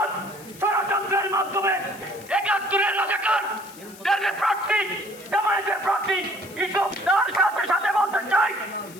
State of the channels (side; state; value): left; noise; hiss, 20 dB below the sound